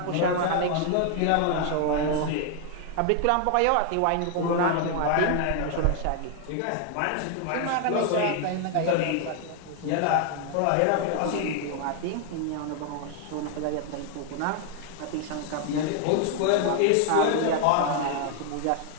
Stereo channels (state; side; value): different; both; correlation 0.00